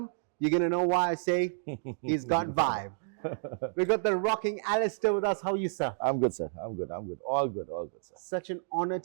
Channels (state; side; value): silent; left; digital silence